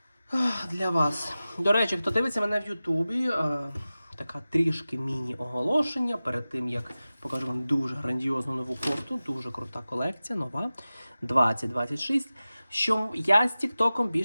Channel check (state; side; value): inverted; both; correlation -0.96